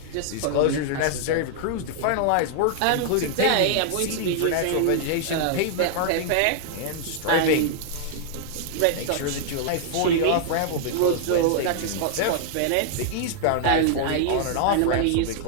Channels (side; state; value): both; different; correlation -0.01